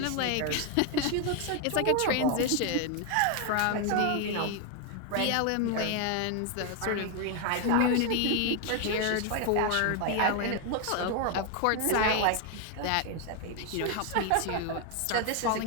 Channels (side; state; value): both; different; correlation 0.01